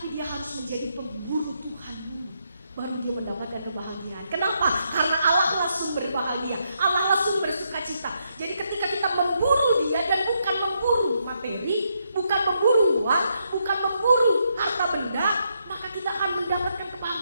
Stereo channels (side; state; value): both; inverted; correlation -0.78